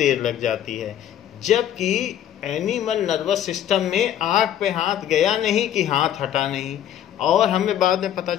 लग जाती है। जबकि एनिमल नर्वस सिस्टम में आग पे हाथ गया नहीं कि हाथ हटा नहीं, और हमें बाद में पता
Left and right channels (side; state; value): right; quieter; 10.8 dB